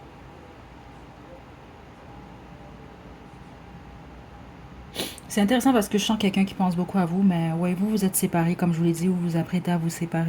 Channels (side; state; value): both; identical; correlation 1.00